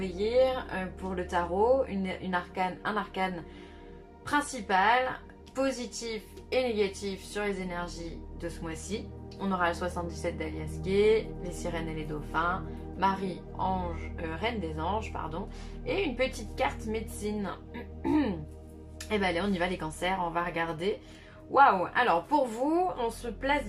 Year pour le tarot, un arcane principal, positif et négatif sur les énergies de ce mois-ci. On aura le 77 d'Alias Gay, les sirènes et les dauphins, Marie, ange, reine des anges, pardon, et une petite carte médecine. Et ben allez, on y va les cancers, on va regarder. Waouh! Alors pour vous, on se place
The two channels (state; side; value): identical; both; correlation 1.00